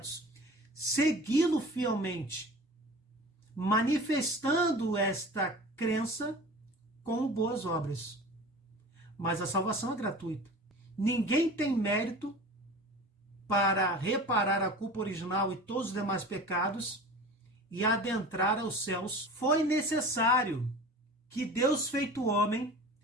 Segui-lo fielmente, manifestando esta crença com boas obras. Mas a salvação é gratuita. Ninguém tem mérito para reparar a culpa original e todos os demais pecados e adentrar aos céus. Foi necessário que Deus, feito homem,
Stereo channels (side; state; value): both; normal; correlation 0.38